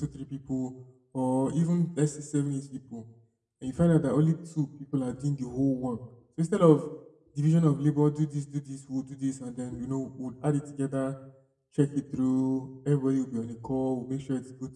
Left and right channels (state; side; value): identical; both; correlation 1.00